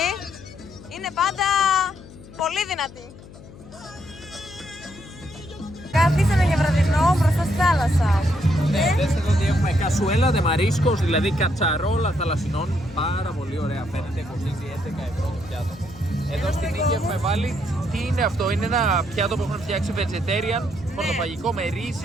Είναι πάντα πολύ δυνατή. Καθίσαμε για βραδινό μπροστά στη θάλασσα. Ναι, δες εδώ ότι έχουμε κασουέλα de mariscos, δηλαδή κατσαρόλα θαλασσινών. Πάρα πολύ ωραία, φαίνεται, κοστίζει 11 ευρώ το πιάτο. Εδώ στην Νίκη έχουμε βάλει, τι είναι αυτό, είναι ένα πιάτο που έχουν φτιάξει vegetarian, πορτοφαγικό με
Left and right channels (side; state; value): left; noise; hum, 18 dB below the sound